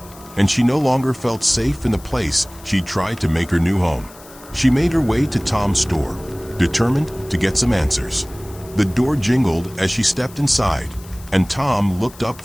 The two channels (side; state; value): left; noise; hiss, 21 dB below the sound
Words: and she no longer felt safe in the place she'd tried to make her new home. She made her way to Tom's store, determined to get some answers. The door jingled as she stepped inside, and Tom looked up